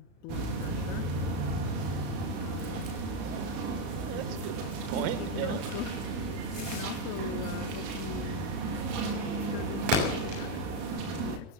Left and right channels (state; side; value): late; left; 35 ms